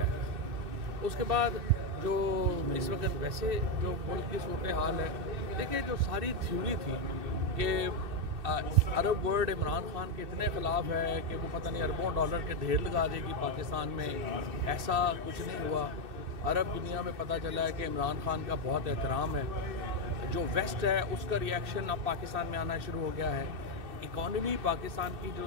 है। उसके बाद जो इस वक्त वैसे जो मुल्क की सूरत हाल है, देखिए जो सारी थ्योरी थी कि अरब वर्ल्ड इमरान खान के इतने ख़िलाफ़ है कि वो पता नहीं अरबों डॉलर के ढेर लगा देगी पाकिस्तान में, ऐसा कुछ नहीं हुआ। अरब दुनिया में पता चला है कि इमरान खान का बहुत एहतराम है। जो वेस्ट है उसका रिएक्शन अब पाकिस्तान में आना शुरू हो गया है। इकॉनमी पाकिस्तान की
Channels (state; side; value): late; left; 2.6 ms